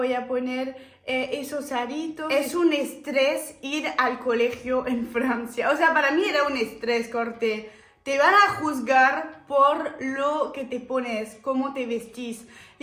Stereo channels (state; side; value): identical; both; correlation 1.00